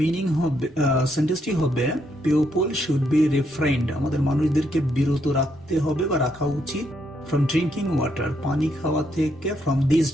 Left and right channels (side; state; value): both; normal; correlation 0.76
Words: মিনিং হবে, সেন্টেন্সটি হবে পিপল শুড বি রিফ্রেইন্ড, আমাদের মানুষদেরকে বিরত রাখতে হবে বা রাখা উচিত ফ্রম ড্রিঙ্কিং ওয়াটার, পানি খাওয়া থেকে, ফ্রম দিস